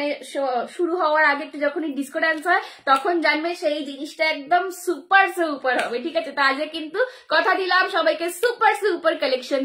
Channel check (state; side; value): identical; both; correlation 1.00